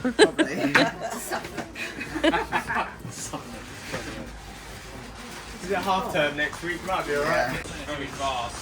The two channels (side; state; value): both; identical; correlation 1.00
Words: Is it half term next week? Might be alright. Very fast.